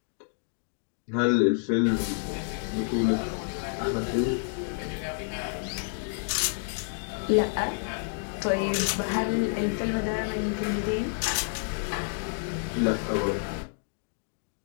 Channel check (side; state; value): right; silent; digital silence